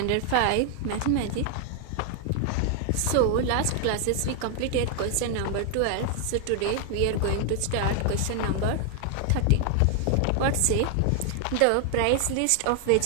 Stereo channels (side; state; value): both; different; correlation 0.00